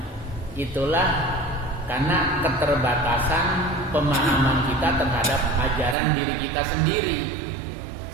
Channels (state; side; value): drops out; left; at 6.0 s